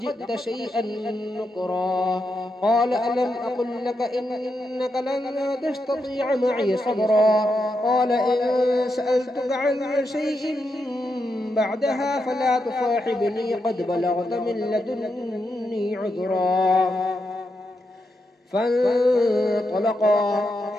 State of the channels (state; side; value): normal; both; correlation 0.84